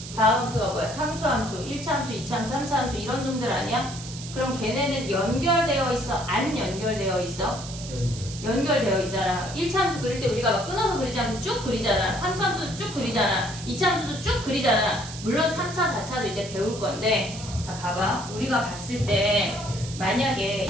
다항함수가 뭐야? 상수함수, 1차 함수, 2차 함수, 3차 함수 이런 놈들 아니야? 그럼 걔네는 연결되어 있어? 안 연결되어 있어? 연결되어 있잖아. 1차 함수 그릴 때 우리가 막 끊어서 그리지 않고 쭉 그리잖아. 상수함수도 쭉 그리잖아. 2차 함수도 쭉 그리잖아. 물론 3차, 4차도 이제 배울 건데 자 봐봐. 우리가 봤을 때 만약에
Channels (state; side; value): noise; right; hiss, 12 dB below the sound